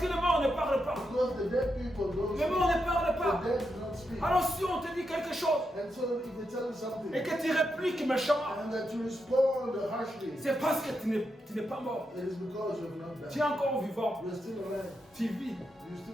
les morts ne parlent pas. because the dead people don't Les morts speak. ne parlent pas. The dead do not speak. Alors si on te dit quelque chose And so if they tell you something et que tu répliques méchamment, and that you respond harshly, c'est parce que tu n'es pas mort. it is because you have not Tu es died. encore vivant. You are still alive. Tu vis. You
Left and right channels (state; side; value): normal; both; correlation 0.84